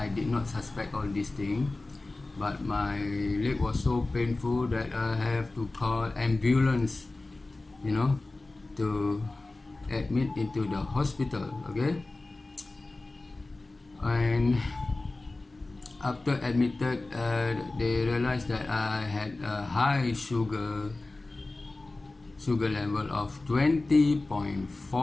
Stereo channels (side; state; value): right; quieter; 3.1 dB